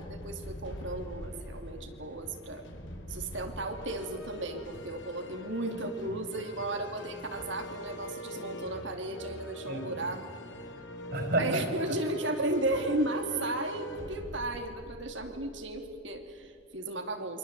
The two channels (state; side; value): normal; both; correlation 0.04